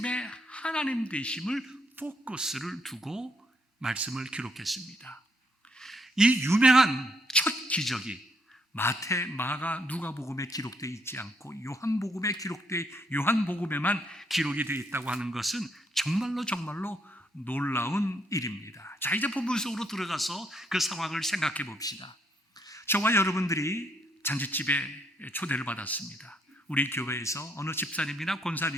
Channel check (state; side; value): normal; both; correlation 0.72